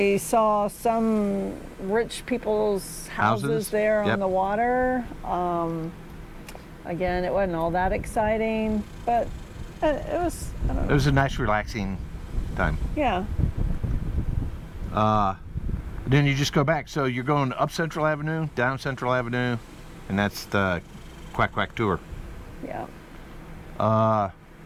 saw some rich people's houses there on the water. Again, it wasn't all that exciting, but it was, I don't know. It was a nice, relaxing time. Yeah. Then you just go back. So you're going up Central Avenue, down Central Avenue, and that's the Quack Quack tour. Yeah. I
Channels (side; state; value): both; identical; correlation 1.00